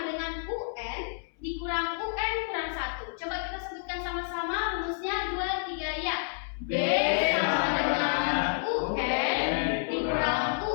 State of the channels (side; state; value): right; silent; 58 dB below the other